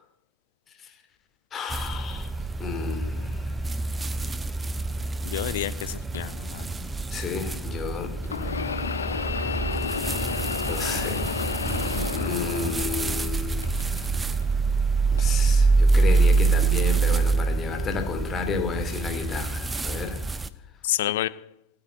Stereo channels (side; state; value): both; normal; correlation 0.64